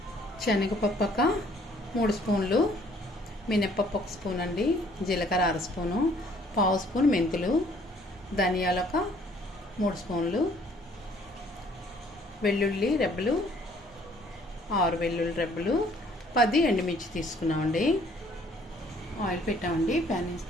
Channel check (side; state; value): both; normal; correlation 0.60